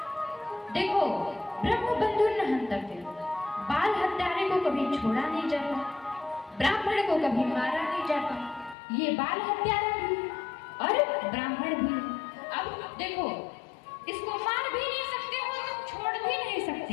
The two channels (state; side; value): drops out; right; at 8.8 s